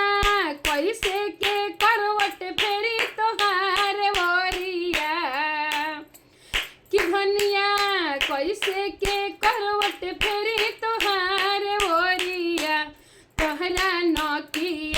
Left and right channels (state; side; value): identical; both; correlation 1.00